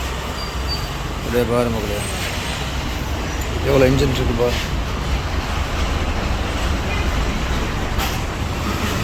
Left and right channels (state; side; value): identical; both; correlation 1.00